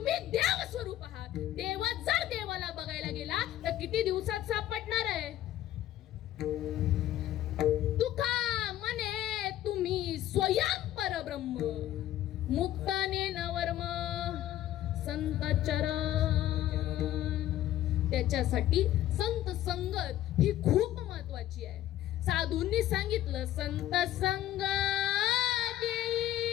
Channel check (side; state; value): right; quieter; 13.0 dB